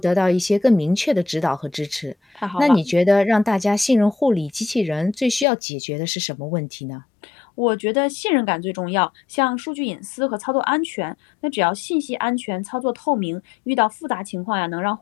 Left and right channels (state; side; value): drops out; right; at 5.5 s